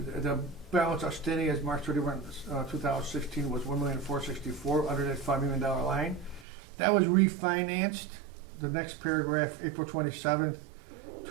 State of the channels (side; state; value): left; drops out; at 6.5 s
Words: balance outstanding as March 31, 2016 was $1,464,000 under that $5 million line. That was refinanced. The next paragraph, April 27th,